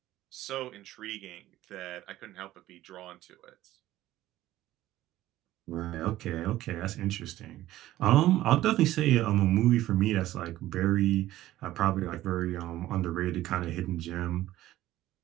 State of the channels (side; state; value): left; quieter; 14.9 dB